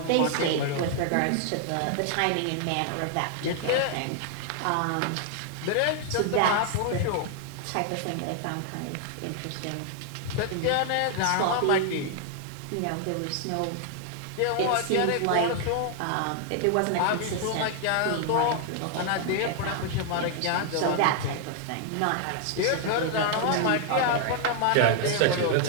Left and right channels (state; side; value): different; both; correlation 0.00